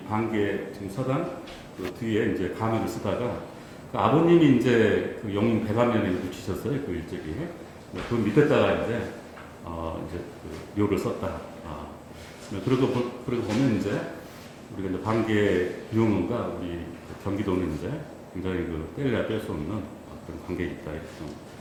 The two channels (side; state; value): both; identical; correlation 1.00